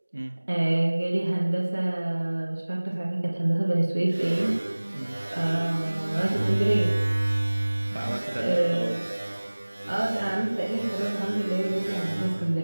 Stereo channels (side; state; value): both; inverted; correlation -1.00